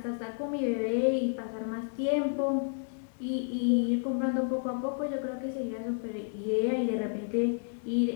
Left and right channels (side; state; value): right; silent; 57 dB below the other